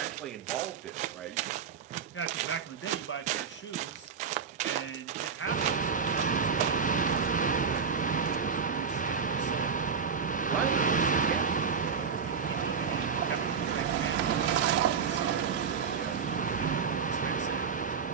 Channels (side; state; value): left; quieter; 6.2 dB